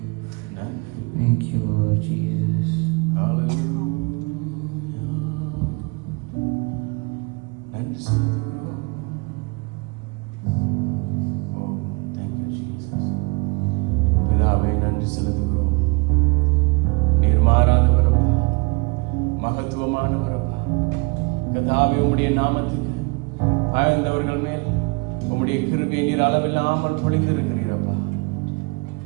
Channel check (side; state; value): left; quieter; 29.1 dB